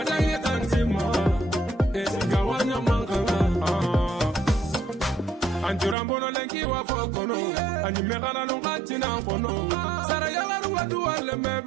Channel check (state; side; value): drops out; left; at 6.0 s